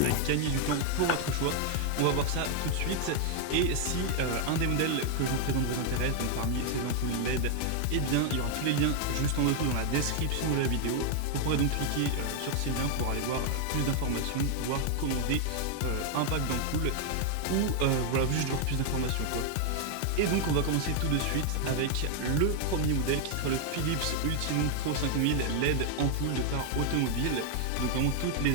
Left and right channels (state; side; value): different; both; correlation 0.00